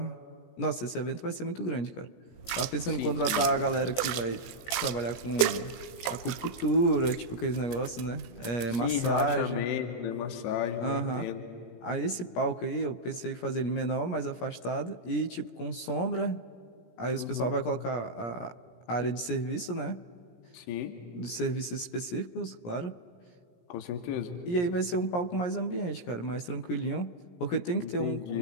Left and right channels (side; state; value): right; late; 17 ms